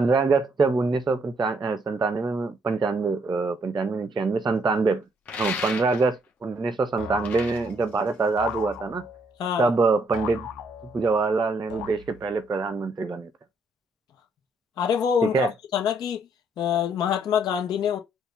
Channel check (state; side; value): normal; both; correlation 0.70